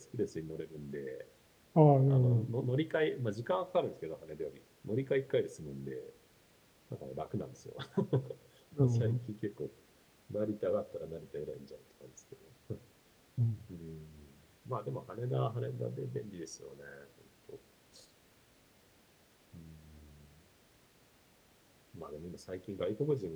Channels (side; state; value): both; identical; correlation 1.00